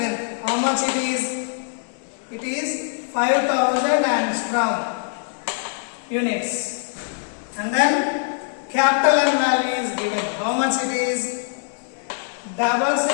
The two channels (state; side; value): silent; right; digital silence